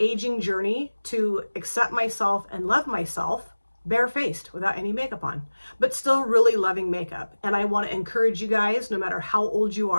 journey to accept myself and love myself barefaced without any makeup on, but still really loving makeup. And I want to encourage you guys, no matter how old you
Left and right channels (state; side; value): inverted; both; correlation -1.00